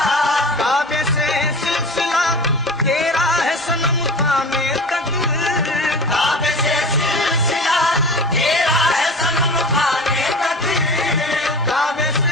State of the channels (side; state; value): both; normal; correlation 0.35